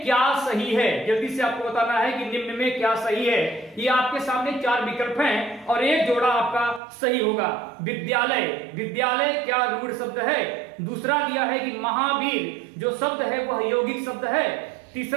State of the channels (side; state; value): left; drops out; at 6.8 s